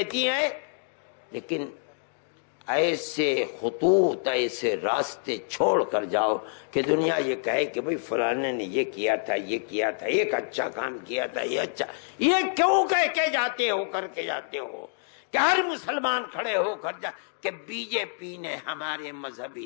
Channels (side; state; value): right; silent; digital silence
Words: ہیں، لیکن ایسے خطوط، ایسے راستے چھوڑ کر جاؤ کہ دنیا یہ کہے کہ بھئی فلانے نے یہ کیا تھا، یہ کیا تھا، ایک اچھا کام کیا تھا، یہ اچھا، یہ کیوں کہہ کے جاتے ہو، کر کے جاتے ہو کہ ہر مسلمان کھڑے ہو کر جا کہ بی جے پی نے ہمارے مذہبی